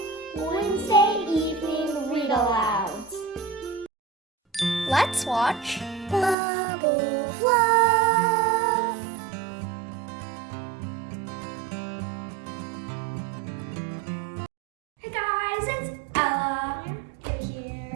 Wednesday Evening Read-Alouds. Let's watch Bubble Fluff! Hey guys, it's Ella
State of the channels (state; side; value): drops out; left; at 6.4 s